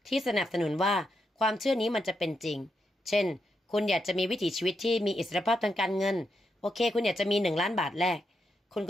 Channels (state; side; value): normal; both; correlation 0.82